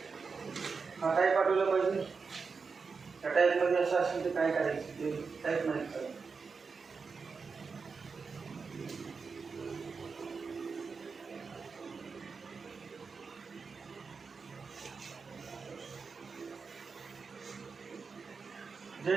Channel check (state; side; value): quieter; left; 5.0 dB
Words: हा टाईप पाठवला पाहिजे. त्या टाईपमध्ये असं असेल तर काय करायचं ते टाईप नाही करायचं.